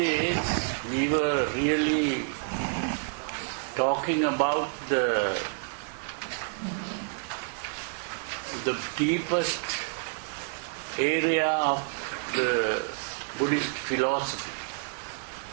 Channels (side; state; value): left; silent; 56 dB below the other